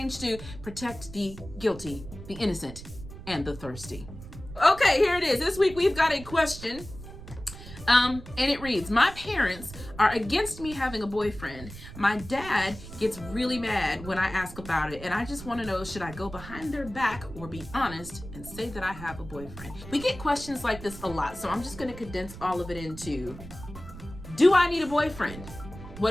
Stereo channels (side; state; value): right; noise; rumble, 14 dB below the sound